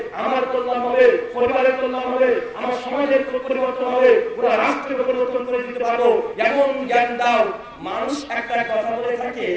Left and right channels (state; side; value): identical; both; correlation 1.00